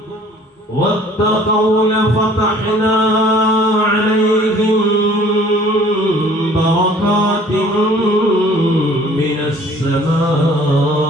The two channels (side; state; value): both; normal; correlation 0.53